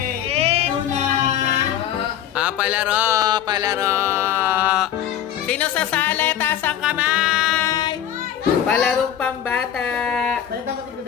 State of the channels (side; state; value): right; quieter; 10.4 dB